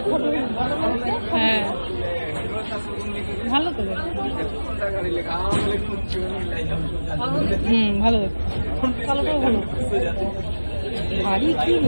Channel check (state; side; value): inverted; both; correlation -1.00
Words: হ্যাঁ ভালো তো ভালো দেখো, কালোটাও ভালো। ভারী কি